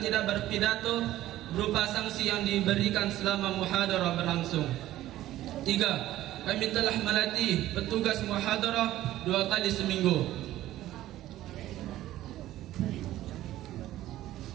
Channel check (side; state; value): left; quieter; 14.5 dB